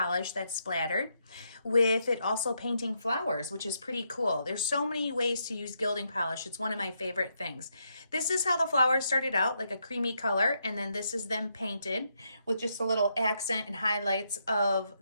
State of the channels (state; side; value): inverted; both; correlation -0.79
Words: that's splattered, with it also painting flowers, which is pretty cool. There's so many ways to use gilding polish. It's one of my favorite things. This is how the flowers started out, like a creamy color, and then this is them painted with just a little accent and highlights of